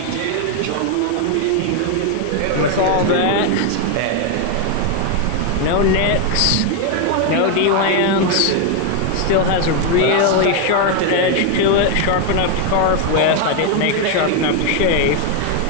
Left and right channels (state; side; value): different; both; correlation 0.01